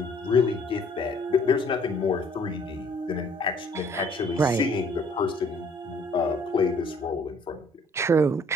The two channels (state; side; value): normal; both; correlation 0.59